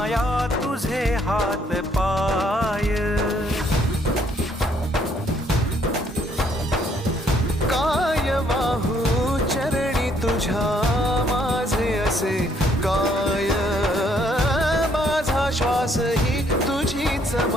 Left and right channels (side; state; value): both; normal; correlation 0.67